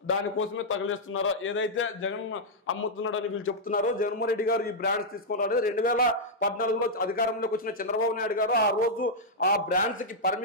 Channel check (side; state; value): both; normal; correlation -0.06